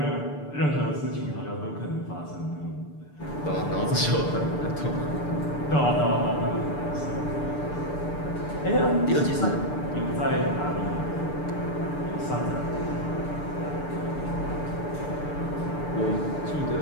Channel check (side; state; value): right; late; 6.8 ms